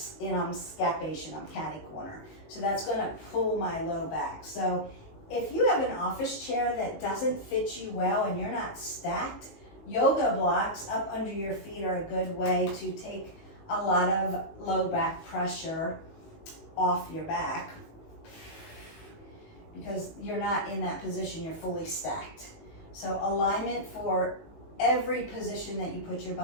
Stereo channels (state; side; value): late; right; 19 ms